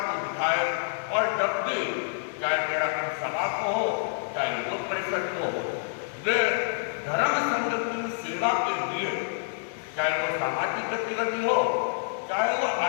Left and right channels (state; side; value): silent; right; digital silence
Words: दिखाए, और जब भी चाहे तेरापन सभा को हो, चाहे युवक परिषद को हो, वे धर्म संघ की सेवा के लिए, चाहे वो सामाजिक गतिविधि हो, चाहे वो